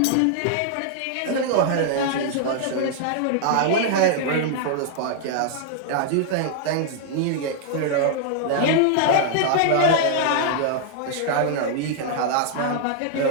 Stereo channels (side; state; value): both; different; correlation -0.01